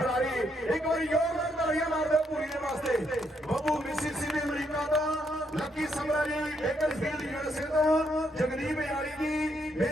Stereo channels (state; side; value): normal; both; correlation 0.75